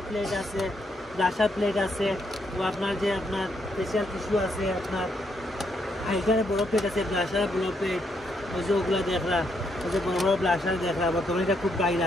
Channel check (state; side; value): normal; both; correlation 0.76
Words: প্লেট আছে ব্লাশার প্লেট আছে ও আপনার যে আপনার ফেশিয়াল টিস্যু আছে আপনার হাইলাইটারে বড় প্লেট আছে ব্লাশারে বড় প্লেট ওই যে ওগুলা দেখরা ওই যে বড় বড় ব্লাশার দেখরা বর্তমানে এটা খুব